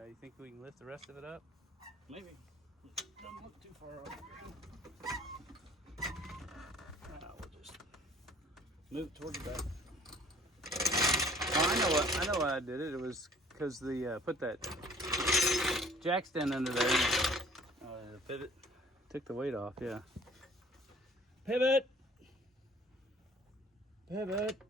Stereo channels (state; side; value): normal; both; correlation 0.54